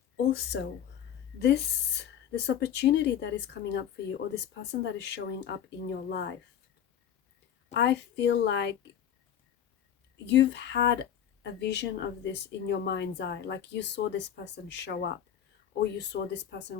Also, this opportunity that is coming up for you, or this person that is showing up in your life, I feel like you've had a vision of this in your mind's eye. Like you saw this person show up, or you saw this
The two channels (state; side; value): quieter; right; 9.5 dB